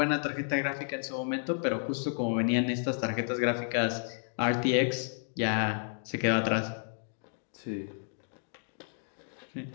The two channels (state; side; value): silent; right; digital silence